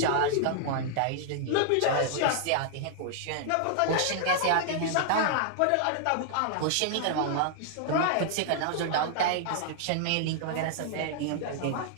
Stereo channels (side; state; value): both; different; correlation -0.01